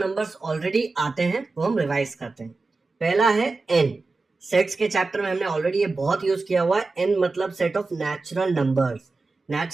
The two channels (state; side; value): quieter; left; 3.7 dB